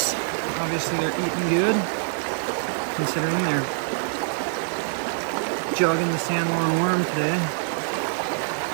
Obviously they're eating good, considering they're jogging the sandworm worm today.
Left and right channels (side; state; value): left; silent; digital silence